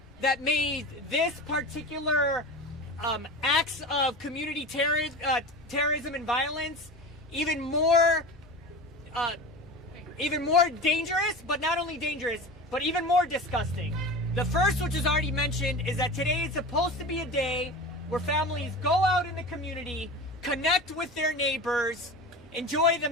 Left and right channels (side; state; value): both; normal; correlation 0.31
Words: that made this particular acts of community terrorism and violence even more dangerous, but not only dangerous, but even more disgusting. The first, which is already mentioned, is that today is supposed to be a day where families go out in the community, connect with their neighbors, enjoy